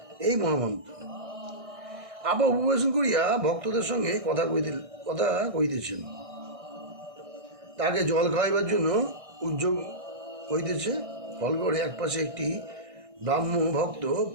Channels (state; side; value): late; left; 1.6 ms